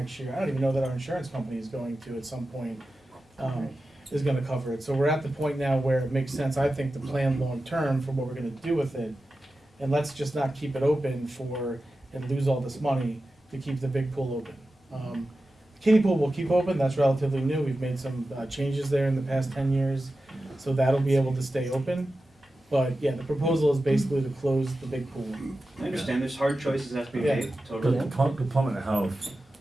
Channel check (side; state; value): both; normal; correlation 0.93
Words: year, I don't even know that our insurance company is going to at some point, is gonna cover it. So we're at the point now where it makes sense, I think, to plan long-term for what we're gonna do with it. And let's just not keep it open and lose all this money to keep the big pool open. Kiddie pool will keep open, that's relatively new, we've made some changes there in the past 10 years, so that'll be able to stay open. But yeah, the proposal is basically to close the big pool. I understand there's hard choices that have to be Yeah. made, The totally. Department of Health